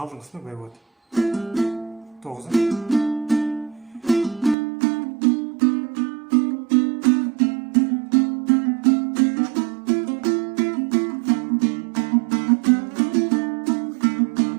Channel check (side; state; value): left; drops out; at 4.5 s